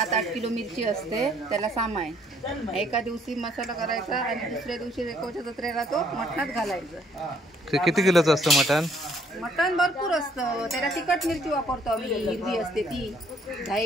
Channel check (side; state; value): both; normal; correlation 0.64